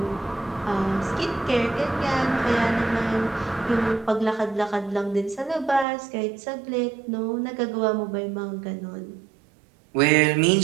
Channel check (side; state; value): left; drops out; at 5.9 s